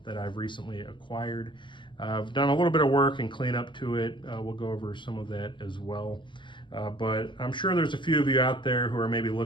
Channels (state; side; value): late; right; 0.23 ms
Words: that I've recently acquired. I've done a little bit of work and cleanup to it. We'll go over some of that as well. But I'm sure there's a few of you out there who are maybe